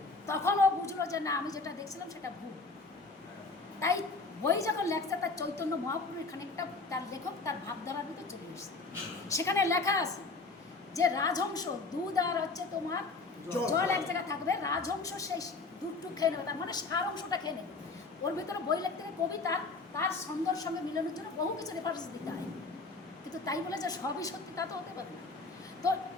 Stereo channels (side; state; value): right; quieter; 3.8 dB